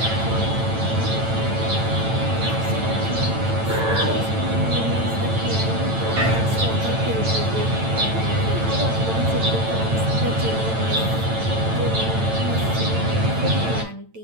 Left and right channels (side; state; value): left; late; 9.0 ms